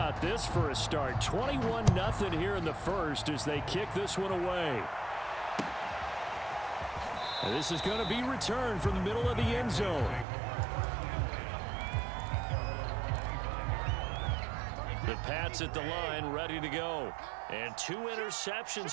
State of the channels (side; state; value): left; drops out; at 10.2 s